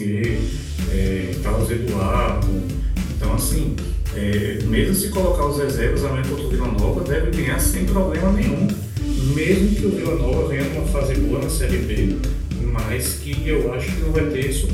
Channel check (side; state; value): both; identical; correlation 1.00